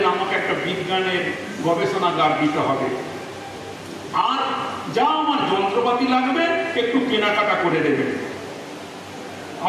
আমাকে একটা বিজ্ঞানের গবেষণাগার দিতে হবে, আর যা আমার যন্ত্রপাতি লাগবে একটু কেনাকাটা করে দেবেন।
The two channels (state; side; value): identical; both; correlation 1.00